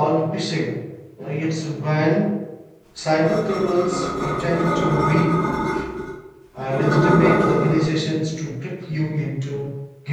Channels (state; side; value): identical; both; correlation 1.00